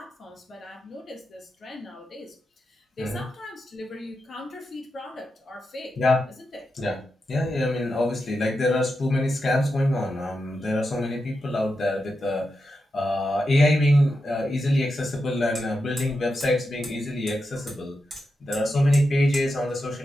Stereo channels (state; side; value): normal; both; correlation 0.88